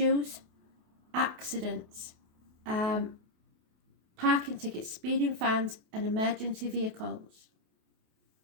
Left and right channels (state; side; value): late; left; 28 ms